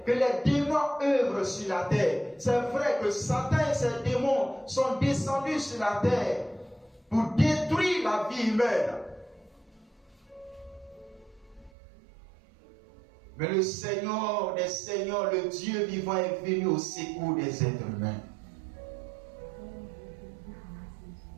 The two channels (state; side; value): drops out; left; at 11.7 s